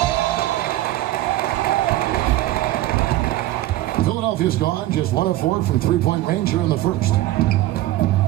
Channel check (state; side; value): quieter; left; 15.8 dB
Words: Philadelphia's gone just 1 of 4 from three-point range here in the first.